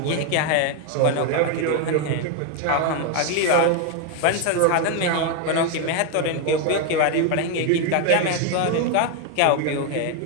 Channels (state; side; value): different; both; correlation 0.01